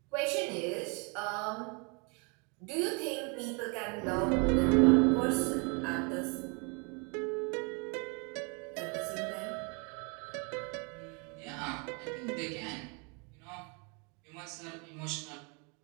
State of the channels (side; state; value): left; quieter; 33.8 dB